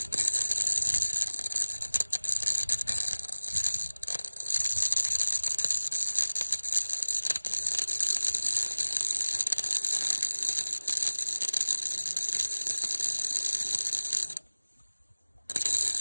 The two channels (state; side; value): inverted; both; correlation -1.00